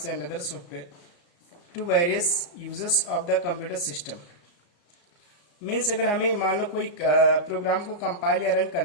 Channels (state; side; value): late; right; 34 ms